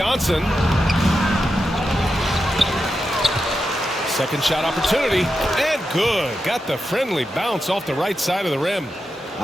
Second shot opportunity, and good. Got the friendly bounce off the right side of the rim.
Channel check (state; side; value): normal; both; correlation 0.88